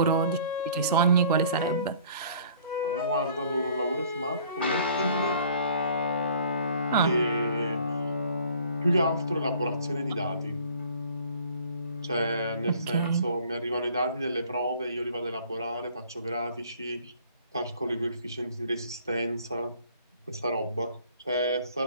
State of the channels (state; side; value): inverted; both; correlation -0.53